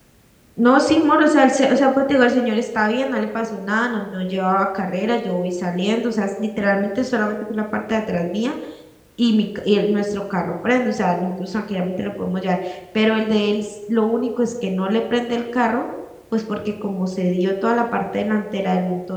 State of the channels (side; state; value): both; identical; correlation 1.00